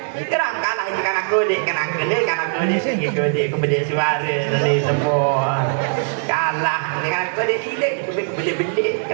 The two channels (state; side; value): silent; left; digital silence